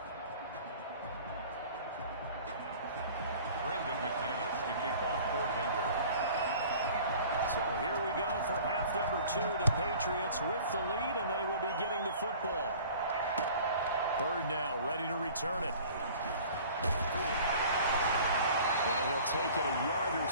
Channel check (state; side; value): inverted; both; correlation -0.47